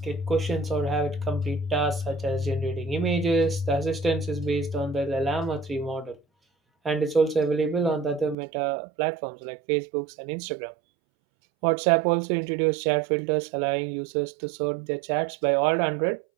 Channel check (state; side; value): drops out; left; at 8.3 s